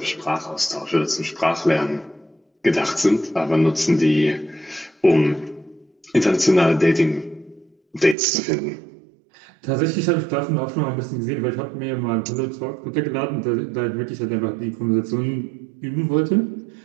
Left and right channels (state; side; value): drops out; left; at 8.2 s